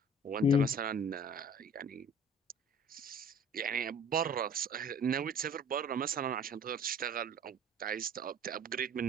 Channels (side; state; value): both; normal; correlation 0.47